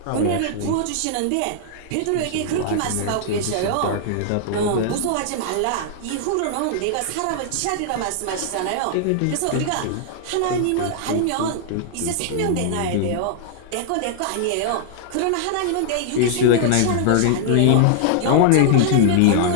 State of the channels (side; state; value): both; different; correlation -0.01